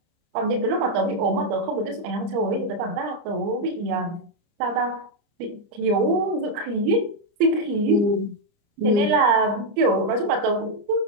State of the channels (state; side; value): late; left; 29 ms